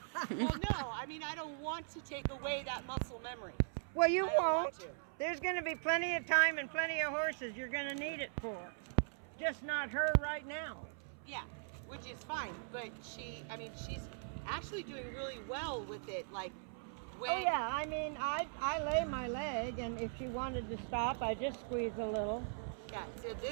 Well, no, I mean, I don't want to take away that muscle memory. Well, you I don't want won't. to. There's going to be plenty of time and plenty of horses you're going to need it for. Just not her right now. Yeah, which is fine. But she's actually doing really well with it. Like, when... Oh yeah, I mean, I lay my leg, and if she wanted to stop, I just squeeze a little. Yeah, so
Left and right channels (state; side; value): silent; left; 51 dB below the other